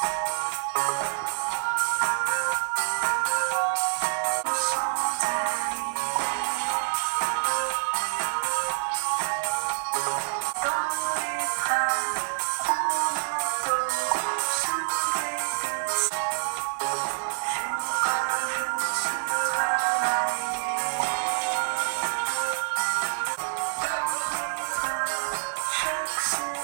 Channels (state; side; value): silent; left; digital silence